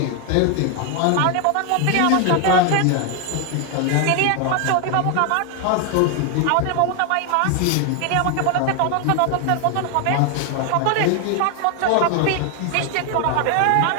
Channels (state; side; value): different; both; correlation 0.00